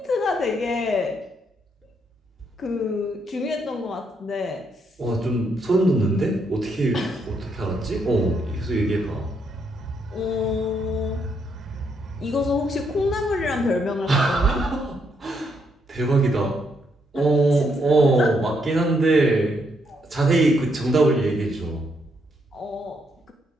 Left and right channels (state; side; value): normal; both; correlation 0.76